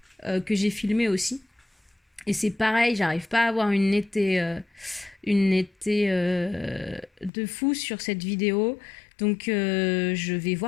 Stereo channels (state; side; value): drops out; right; at 7.3 s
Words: que j'ai filmée aussi. Et c'est pareil, j'arrive pas à avoir une netteté de fou sur cette vidéo. Donc je vais